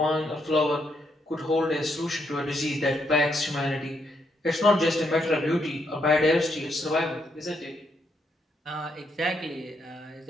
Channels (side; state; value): both; normal; correlation 0.77